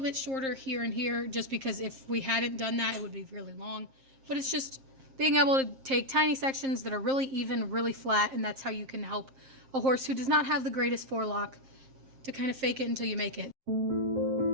shorter here and here, just because if we hadn't done that, it would be really long. But it's just being able to take tiny sections that are really even, really flat, and that's how you can help a horse who does not have the greatest forelock to kind of fake it until you make it.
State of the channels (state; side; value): late; left; 7.6 ms